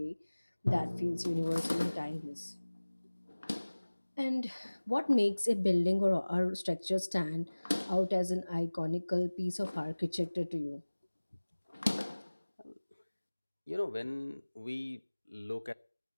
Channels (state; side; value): inverted; both; correlation -1.00